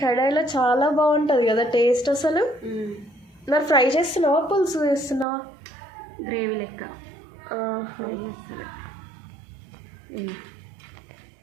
కడాయిలో చాలా బాగుంటుంది కదా టేస్ట్ అసలు. మరి ఫ్రై చేస్తున్నావా పులుసు చేస్తున్నావా? గ్రేవీ లెక్క. ఆహా,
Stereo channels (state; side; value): drops out; left; at 5.2 s